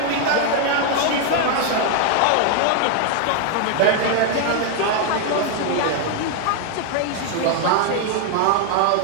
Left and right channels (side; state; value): both; different; correlation 0.00